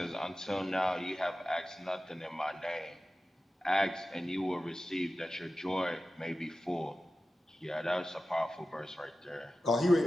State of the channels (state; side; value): normal; both; correlation 0.94